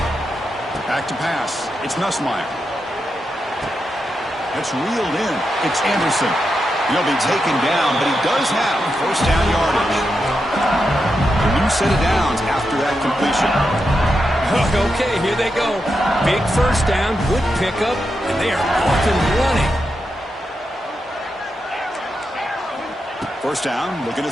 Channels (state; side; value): normal; both; correlation 0.86